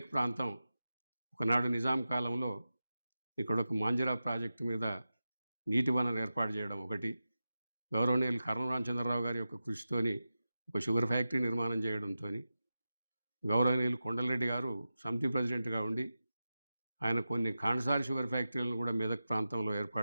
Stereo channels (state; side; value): inverted; both; correlation -0.93